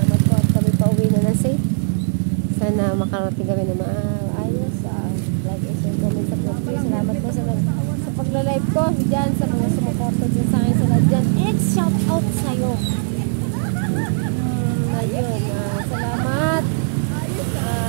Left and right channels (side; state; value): left; silent; 63 dB below the other